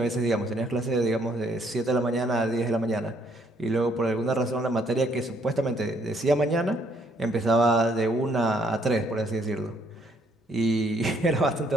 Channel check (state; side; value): normal; both; correlation 0.68